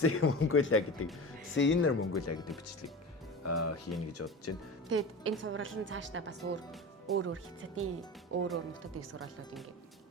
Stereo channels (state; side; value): normal; both; correlation 0.31